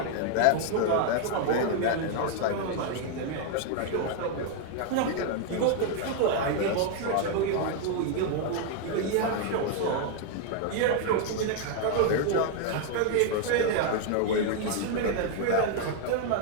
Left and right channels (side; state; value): both; different; correlation 0.00